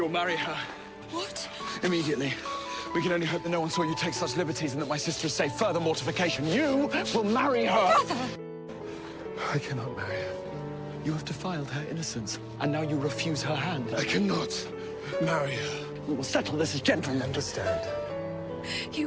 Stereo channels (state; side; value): identical; both; correlation 1.00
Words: marry her. What? Immediately. We can only hope that no one saw you take such liberties and that my sister is safe. Further mortification. You will marry her. Brother! I cannot marry her. You have defiled her innocence, and now you refuse her hand. I cannot marry her. We will settle this as gentlemen. Understand?